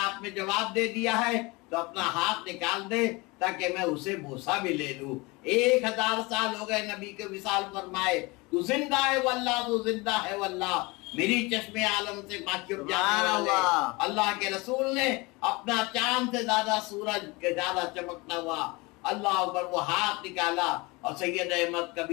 آپ نے جواب دے دیا ہے تو اپنا ہاتھ نکال دے تاکہ میں اسے بوسہ بھی لے لوں. 1000 سال ہو گئے نبی کے وصال فرمائے، تو زندہ ہے واللہ، تو زندہ ہے واللہ. میری چشم عالم سے واقف جانے والے اللہ کے رسول نے اپنا چاند سے زیادہ سورج کے زیادہ چمکتا ہوا اللہ اکبر وہ ہاتھ نکالا اور سید احمد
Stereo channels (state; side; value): quieter; right; 24.9 dB